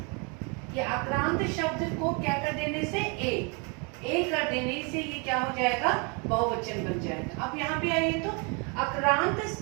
ये आक्रांत शब्द को क्या कर देने से, ए कर देने से ये क्या हो जाएगा, बहुवचन बन जाएगा। अब यहाँ पे आइए तो आक्रांत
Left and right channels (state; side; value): quieter; left; 33.2 dB